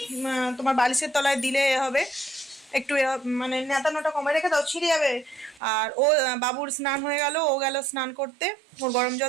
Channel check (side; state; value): left; drops out; at 5.6 s